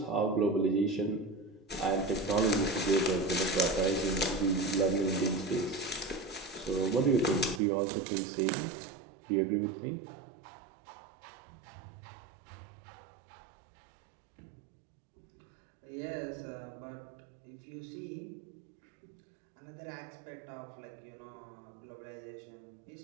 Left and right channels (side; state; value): left; drops out; at 7.6 s